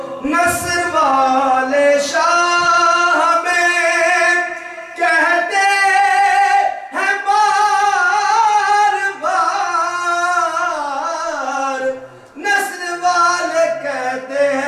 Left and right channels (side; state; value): both; identical; correlation 1.00